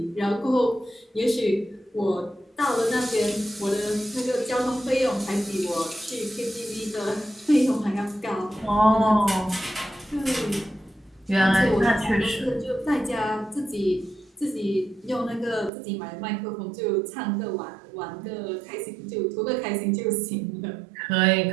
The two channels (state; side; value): drops out; left; at 15.7 s